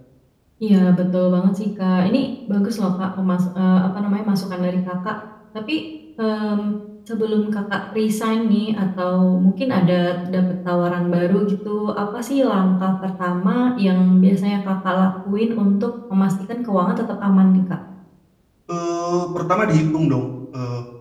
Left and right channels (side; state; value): both; identical; correlation 1.00